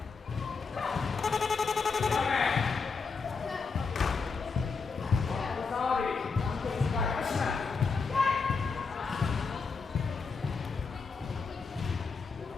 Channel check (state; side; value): quieter; right; 4.9 dB